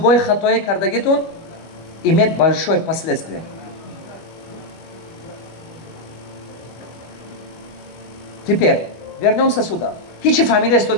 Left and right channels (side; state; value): right; late; 25 ms